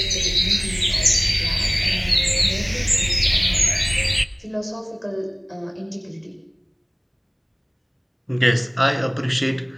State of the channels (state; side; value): identical; both; correlation 1.00